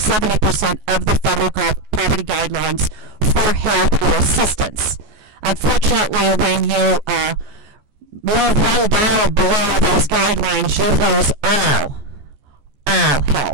of the federal poverty guidelines for help or assistance. Unfortunately, when you move $1 below those guidelines, you lose all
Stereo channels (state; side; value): late; left; 14 ms